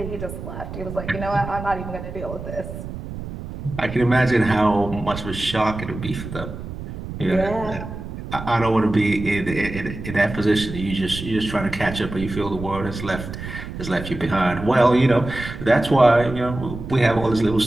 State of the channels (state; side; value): noise; right; rumble, 9 dB below the sound